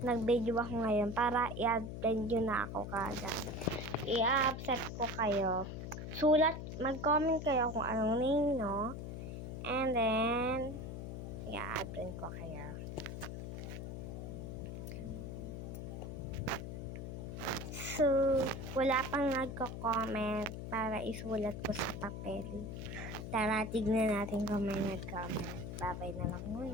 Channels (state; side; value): noise; left; hum, 7 dB below the sound